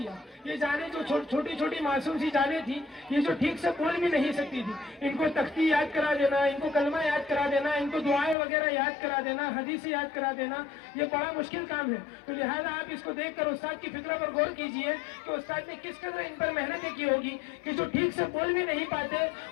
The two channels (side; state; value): right; drops out; at 8.3 s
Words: یہ جانیں جو چھوٹی چھوٹی معصوم سی جانیں تھی، یہ جو ٹھیک سے بول بھی نہیں سکتی تھی، ان کو تختی یاد کرا دینا، ان کو کلمہ یاد کرا دینا، ان کو دعائیں وغیرہ یاد کرا دینا، حدیث یاد کرا دینا، یہ بڑا مشکل کام ہے. تو لہٰذا آپ اس کو دیکھ کر استاد کی فکر پر غور کیجئے کہ استاد نے کس قدر ان پر محنتیں کی ہوگی کہ جو ٹھیک سے بول بھی نہیں پاتے